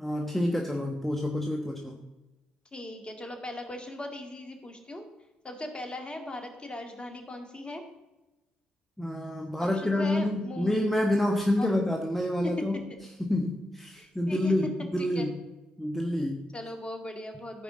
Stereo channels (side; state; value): both; normal; correlation 0.88